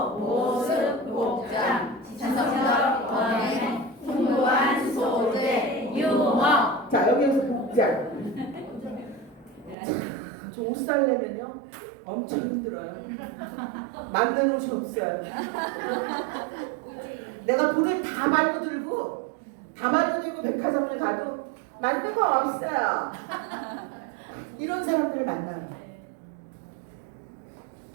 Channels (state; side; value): drops out; left; at 9.8 s